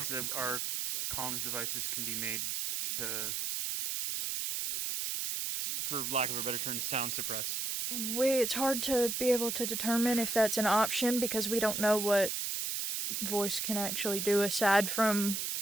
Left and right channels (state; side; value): noise; right; hiss, 2 dB below the sound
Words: that our comms devices can be made to, for lack of a better term, sound suppress? It's hard to be able to determine if that's an option because we don't know what voice can actually do aside from